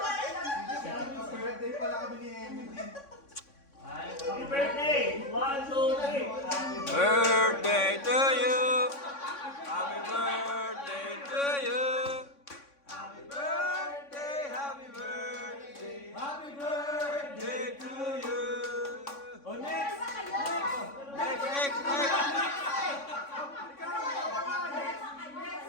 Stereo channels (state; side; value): late; right; 3.6 ms